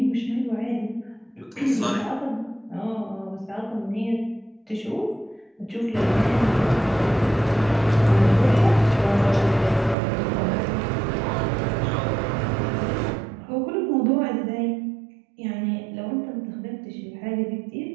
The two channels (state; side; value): drops out; left; at 10.0 s